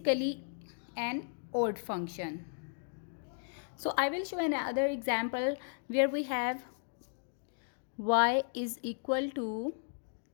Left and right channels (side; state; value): right; silent; digital silence